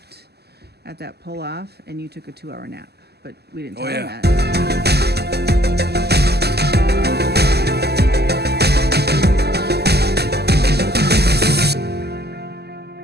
at that pull-off, and you took a 2-hour nap, but we didn't tell them that.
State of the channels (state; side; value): late; left; 0.47 ms